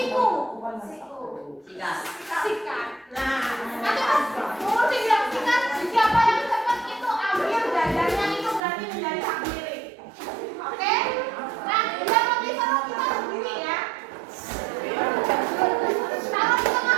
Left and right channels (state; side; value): drops out; left; at 8.6 s